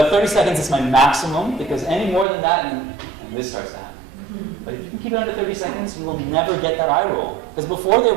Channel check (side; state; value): left; drops out; at 2.2 s